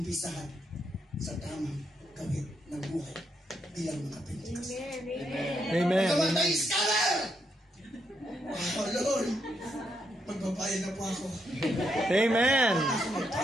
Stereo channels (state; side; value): normal; both; correlation 0.79